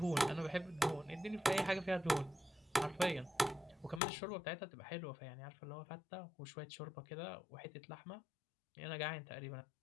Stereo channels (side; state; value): right; drops out; at 4.0 s